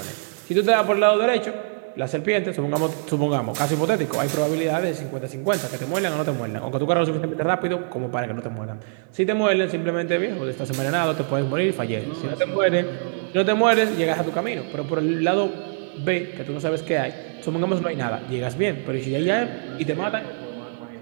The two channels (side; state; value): left; silent; 58 dB below the other